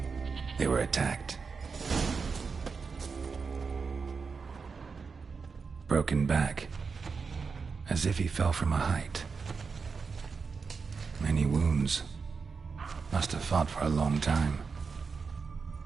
They were attacked. Broken back, as if he fell from a height. Many wounds. Must have fought for a long time.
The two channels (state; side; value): quieter; left; 5.1 dB